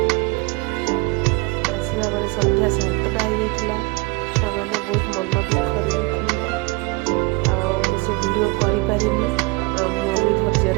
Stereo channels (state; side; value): quieter; left; 25.8 dB